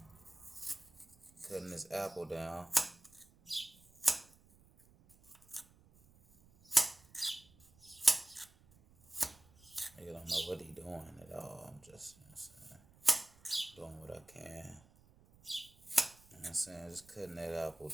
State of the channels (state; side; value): noise; right; rumble, 27 dB below the sound